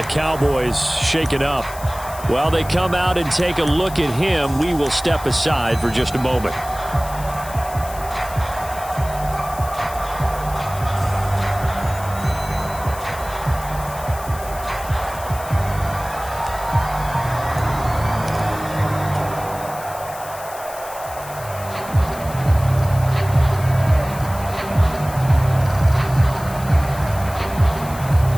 Cowboys shaken up. While they come out and take a look at him, we will step aside for just a moment.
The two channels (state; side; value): noise; left; hiss, 15 dB below the sound